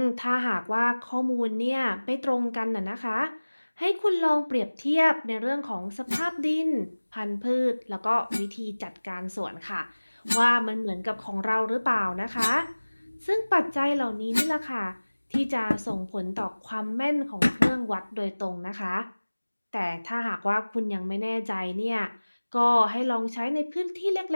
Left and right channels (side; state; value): both; inverted; correlation -1.00